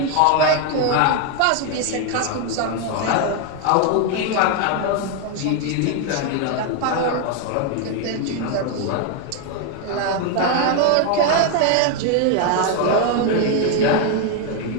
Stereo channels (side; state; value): both; different; correlation 0.01